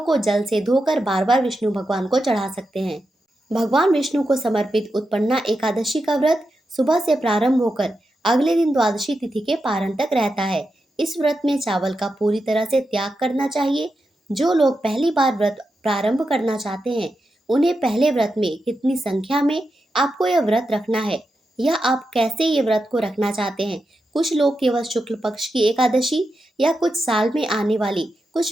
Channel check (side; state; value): both; normal; correlation 0.88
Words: जल से धोकर बार बार विष्णु भगवान को चढ़ा सकते हैं। भगवान विष्णु को समर्पित उत्पन्ना एकादशी का व्रत सुबह से प्रारंभ होकर अगले दिन द्वादशी तिथि के पारण तक रहता है। इस व्रत में चावल का पूरी तरह से त्याग करना चाहिए। जो लोग पहली बार व्रत प्रारंभ करना चाहते हैं, उन्हें पहले व्रत में कितनी संख्या में आपको यह व्रत रखना है, या आप कैसे ये व्रत को रखना चाहते हैं। कुछ लोग केवल शुक्ल पक्ष की एकादशी या कुछ साल में आने वाली